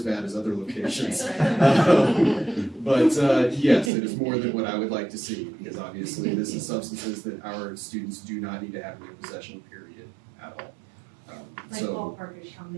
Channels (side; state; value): left; drops out; at 3.9 s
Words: bad as other locations. But yes, it is more than what I would like to see, because obviously this is substances that our students do not need to have in their possession, period, at all. Like ballpark is how